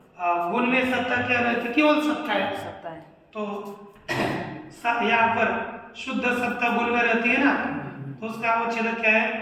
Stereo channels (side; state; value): both; identical; correlation 1.00